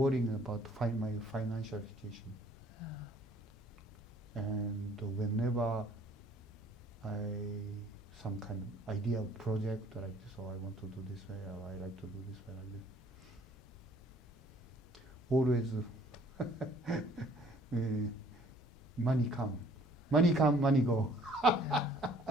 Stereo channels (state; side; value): normal; both; correlation 0.57